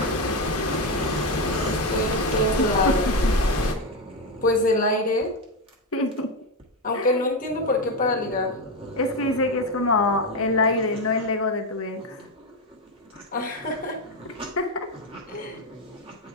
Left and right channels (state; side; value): normal; both; correlation 0.10